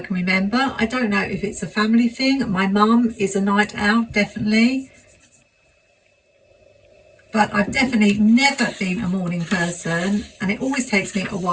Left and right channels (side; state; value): both; identical; correlation 1.00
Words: remember. I don't know if it's a family thing. My mum is a night owl, definitely. But I've definitely never been a morning person, and it always takes me a